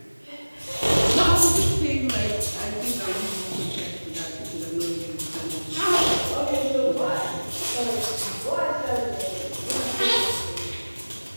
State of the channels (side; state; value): both; inverted; correlation -1.00